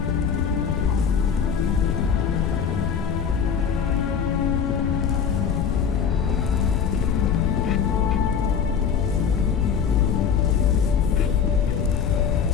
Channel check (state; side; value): quieter; right; 7.1 dB